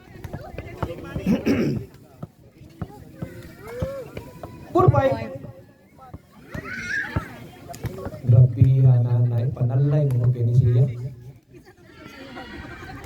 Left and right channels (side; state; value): both; identical; correlation 1.00